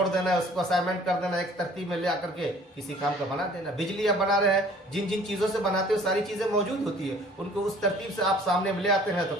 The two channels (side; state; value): both; normal; correlation 0.52